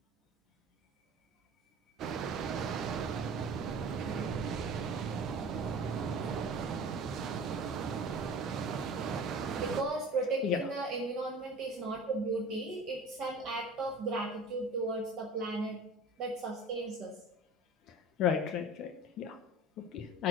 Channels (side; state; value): both; normal; correlation 0.40